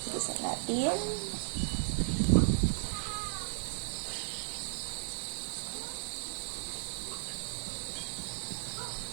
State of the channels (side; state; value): left; silent; 54 dB below the other